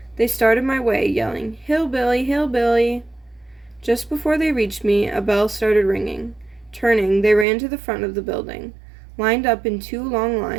They started my way, yelling, "Hillbilly, hillbilly!" Just before they reached me, a bell started ringing. Turning, they ran to the front of the building, lined up in 2 long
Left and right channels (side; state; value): left; drops out; at 7.5 s